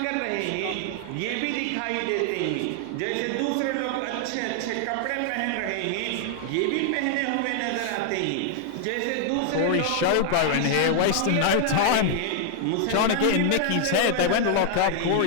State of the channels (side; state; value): both; different; correlation 0.00